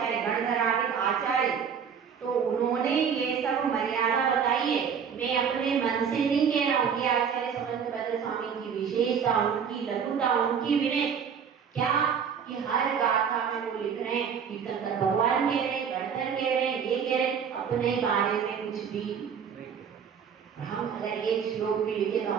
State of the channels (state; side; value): quieter; left; 7.2 dB